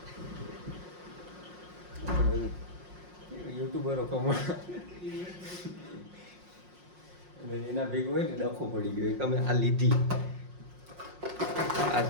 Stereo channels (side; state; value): left; late; 5.6 ms